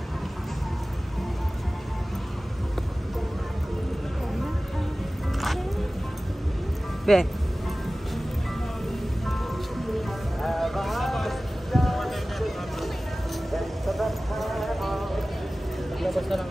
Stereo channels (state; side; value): normal; both; correlation 0.97